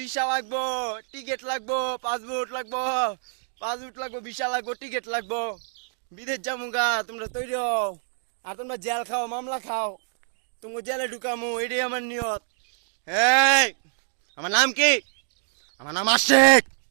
লাগবো, টিকিট লাগবো, পাসপোর্ট লাগবো, ভিসা লাগবো, টিকিট লাগবো, বিদেশ যাবো। তোমরা তৈরি হও, আর তোমরা জেল খাও, মামলা খাও, তোমাকে জেলে ঢুকামো, এটাই আমার নিয়ত। এই, আমার নাম কি? আমার নাম আশিক,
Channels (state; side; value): silent; left; digital silence